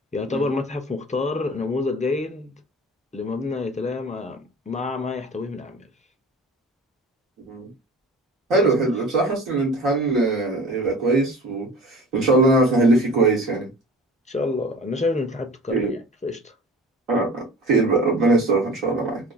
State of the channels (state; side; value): normal; both; correlation 0.40